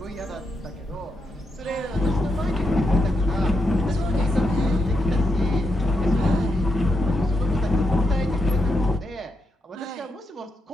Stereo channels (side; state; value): both; normal; correlation 0.83